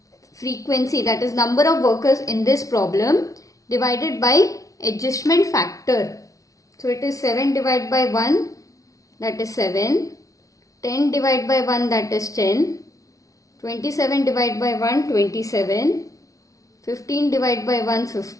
frequency, that is number of workers in this problem, divided by adjustment factor. So it is 7 divided by 1, that is 7. 10 divided by 1, that is 10. 27 divided by 1, 27. 15 divided by 1,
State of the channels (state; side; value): late; right; 0.17 ms